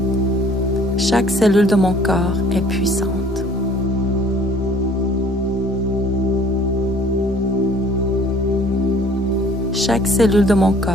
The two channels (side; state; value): both; normal; correlation 0.54